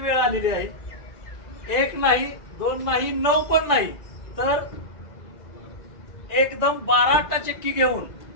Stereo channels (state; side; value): late; right; 1.9 ms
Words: आलेली आहे. 1 नाही 2 नाही 9 पण नाही तर एकदम 12 आटाचक्की घेऊन